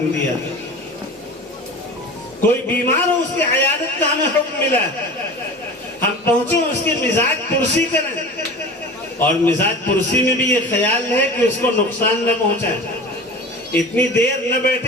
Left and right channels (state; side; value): normal; both; correlation 0.35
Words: دیا، کوئی بیمار ہو اس کی عیادت کا ہمیں حکم ملا ہے۔ ہم پہنچے اس کی مزاج پرسی کریں، اور مزاج پرسی میں بھی یہ خیال ہے کہ اس کو نقصان نہ پہنچائیں، اتنی دیر نہ